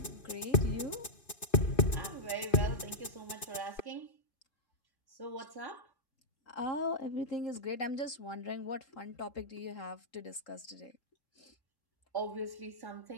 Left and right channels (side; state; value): right; late; 2.5 ms